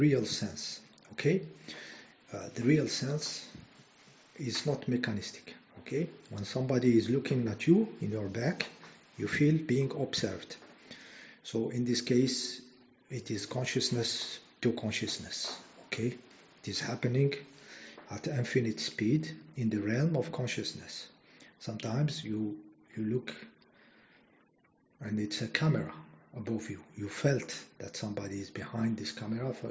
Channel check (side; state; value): both; identical; correlation 1.00